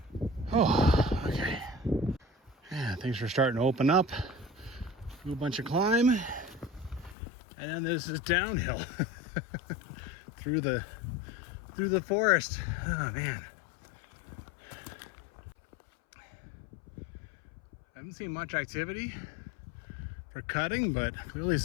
Oh, okay. Yeah, things are starting to open up. Do a bunch of climb, and then there's this downhill through the forest. Oh man. I haven't seen much activity for cutting, but clearly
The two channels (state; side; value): drops out; right; at 7.2 s